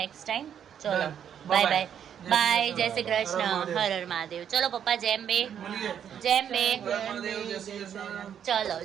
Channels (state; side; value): quieter; left; 8.8 dB